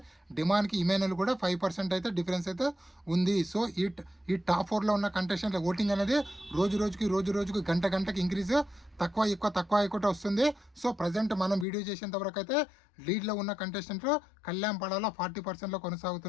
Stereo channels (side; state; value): right; drops out; at 11.7 s